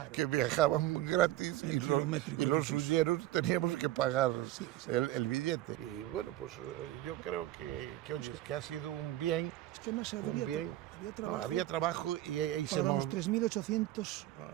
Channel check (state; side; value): quieter; left; 14.8 dB